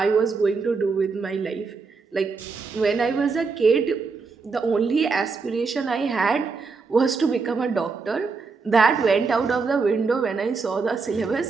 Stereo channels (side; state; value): left; quieter; 4.6 dB